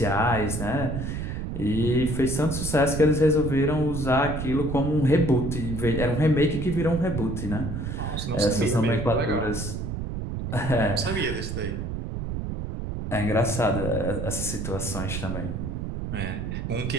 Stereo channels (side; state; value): right; noise; rumble, 4 dB below the sound